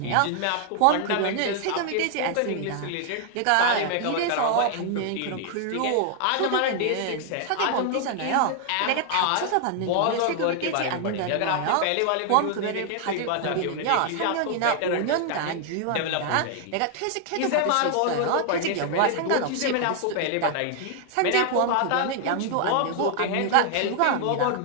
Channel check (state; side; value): different; both; correlation 0.00